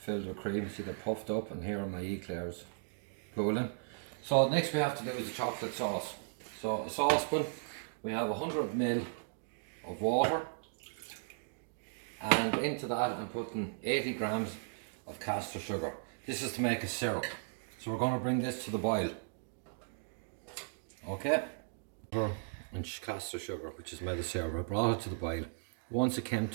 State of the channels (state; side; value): silent; left; digital silence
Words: with cream, see they're puffed up, and here are my eclairs cooling. So next we have to do is the chocolate sauce. So a saucepan, we have 100 ml of water, and into that I'm putting 80 grams of caster sugar. This is to make a syrup. So we're going to bring this to the boil. Okay? And caster sugar, which is made of syrup. I brought it to the boil. Once it came